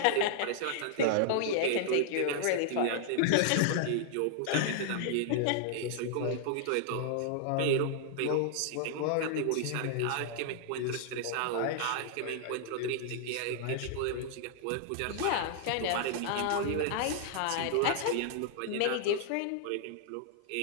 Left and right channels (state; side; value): different; both; correlation -0.01